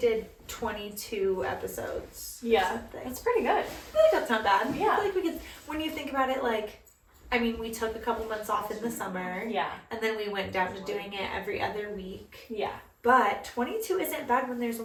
22 episodes. Yeah, that's pretty good. I feel like that's not bad. Yeah. I feel like we could, when you think about it, we took a couple months off in the summer. Yeah. And then we went down to doing it every other week. Yeah. But 22 isn't bad when there's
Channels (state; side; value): identical; both; correlation 1.00